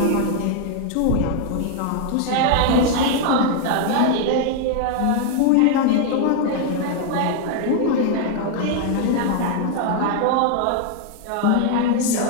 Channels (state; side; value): different; both; correlation 0.00